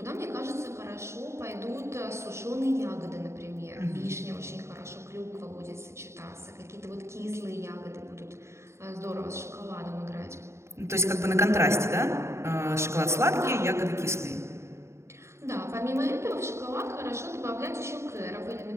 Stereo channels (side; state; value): left; late; 0.13 ms